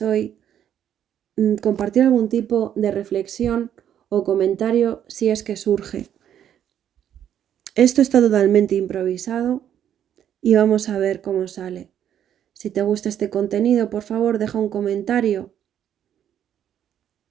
compartir algún tipo de reflexión o comentario si es que surge. Esto está totalmente improvisado y vamos a ver cómo sale. Si te gusta este contenido, por favor, deja un comentario,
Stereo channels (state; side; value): quieter; left; 9.9 dB